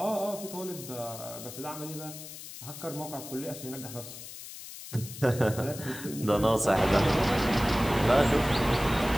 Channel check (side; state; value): left; noise; hiss, 12 dB below the sound